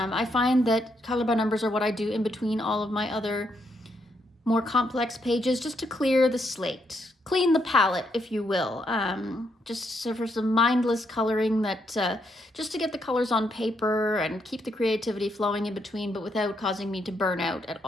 find that color by numbers are what I do in between all of my other more complex pages, just to clear the slate, clean the palette, if you will. Just for some mindless coloring that, just to get the colors on paper and keep the creativity flowing in between, but without causing me to burn out at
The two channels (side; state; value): both; normal; correlation 0.77